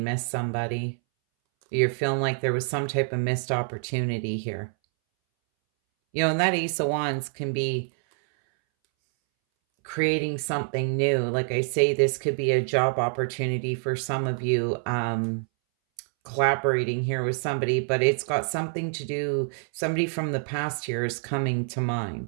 somebody. You're feeling like there was some type of missed opportunity here. And that Ace of Wands can be creating something new. Like I say, this could be a job opportunity for some of you. collaborating here with somebody, but it's got something to do, somebody from the past here is coming to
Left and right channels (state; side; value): silent; left; 61 dB below the other